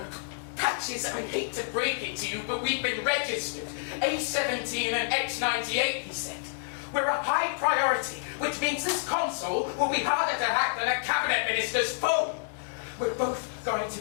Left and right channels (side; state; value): right; silent; 59 dB below the other